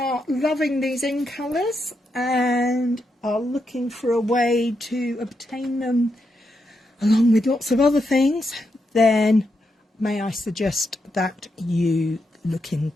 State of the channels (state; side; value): normal; both; correlation 0.83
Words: loving these in colours and are looking for a way to obtain them along with lots of other things, then may I suggest that you look